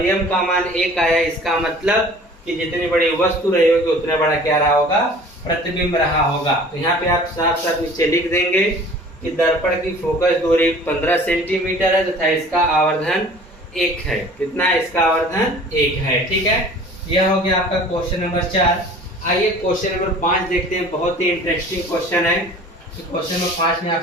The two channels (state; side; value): normal; both; correlation 0.47